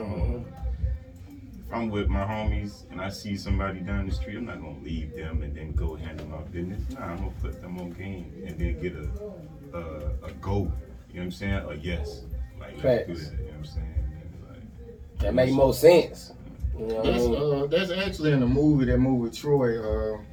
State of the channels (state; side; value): identical; both; correlation 1.00